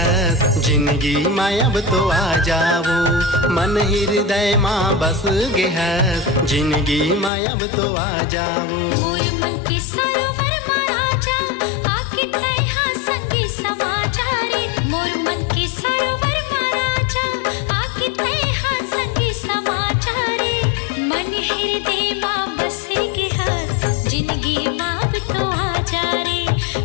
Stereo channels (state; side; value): drops out; right; at 7.3 s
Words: जिंदगी माँ अब तो आ जाओ। मन हृदय माँ बस गेहस जिंदगी माँ अब तो आ जाओ। मोर मन के सरोवर माँ राजा आके तहाँ संगी समा जा रे। मोर मन के सरोवर माँ राजा आके तहाँ संगी समा जा रे। मन हृदय माँ बस गेहस जिंदगी माँ अब तो आ जा रे।